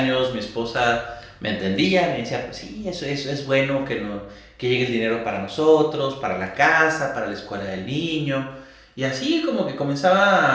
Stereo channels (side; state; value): both; identical; correlation 1.00